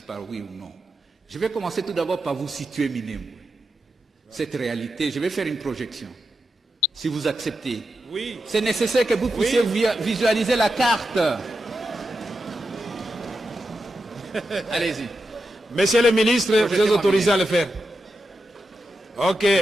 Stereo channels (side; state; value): both; normal; correlation 0.88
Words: par oui ou non. Je vais commencer tout d'abord par vous situer Minembwe. cette réalité, je vais faire une projection. Si vous acceptez. Oui. C'est nécessaire que vous puissiez visualiser la carte. Allez-y. Monsieur le ministre, vous êtes autorisé à le faire. Ok,